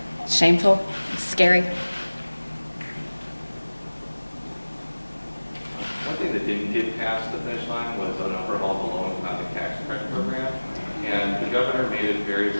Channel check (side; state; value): both; inverted; correlation -1.00